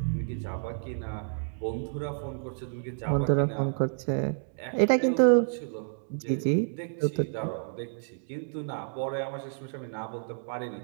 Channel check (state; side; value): silent; left; digital silence